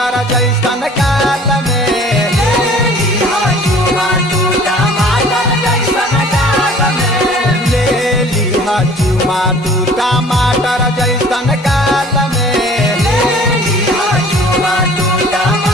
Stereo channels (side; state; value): both; normal; correlation 0.50